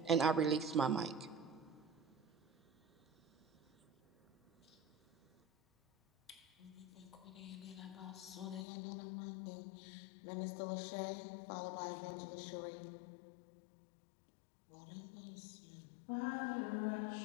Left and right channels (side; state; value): right; drops out; at 8.7 s